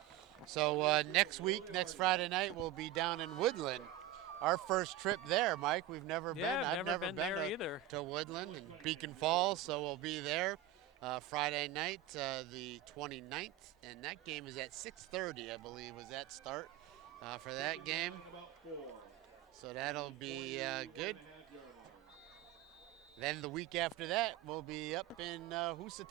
So next week, next Friday night, we'll be down in Woodland. our first trip there, Mike. We've never been. I've never been there to, either. To Woodland and Beacon Falls, so we'll be there Friday night, the 29th, and that game is at 6:30, I believe, was that start for that game. So that'll be good. Then the week after that, we'll be up in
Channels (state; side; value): quieter; left; 11.6 dB